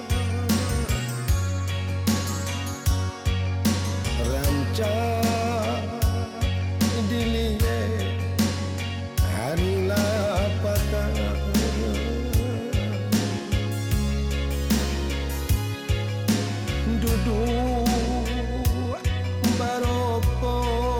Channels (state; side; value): identical; both; correlation 1.00